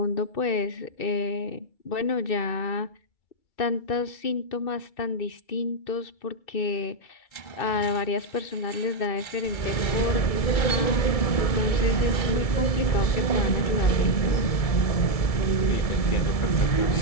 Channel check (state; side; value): late; right; 2.3 ms